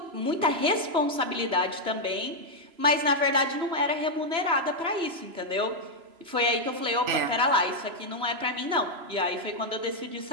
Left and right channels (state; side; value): late; left; 3.0 ms